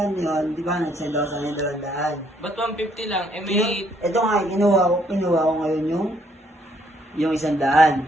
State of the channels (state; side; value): normal; both; correlation 0.68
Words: yun, di ba nagsend ako sa kanya 200. Ba't 150 lang? Eh may... Ito nga, kinuha ko ngayon yung